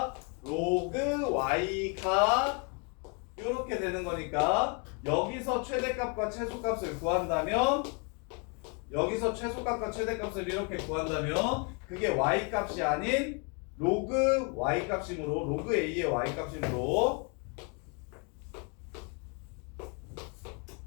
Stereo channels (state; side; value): quieter; right; 34.5 dB